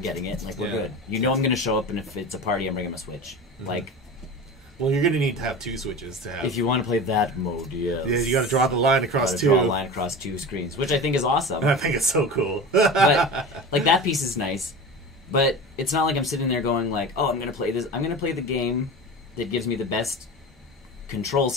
getting it. We're good. I'm going to show up, and if it's a party, I'm bringing my Switch. Mm-hmm. Well, you're going to need to have 2 Switches to have. If you want to play that mode, yes. Yeah, you got to draw the line across 2. Draw a line across 2 screens, which I think is awesome. I think it's so cool. But that piece is nice. But it's not I'm sitting there going oh, I'm going to play this. I'm going to play the game that gives me the best control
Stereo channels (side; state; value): both; normal; correlation 0.31